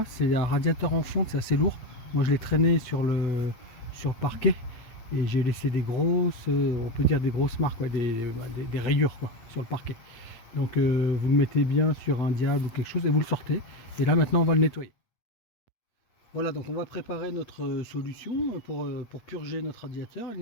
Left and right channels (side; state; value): right; late; 8.5 ms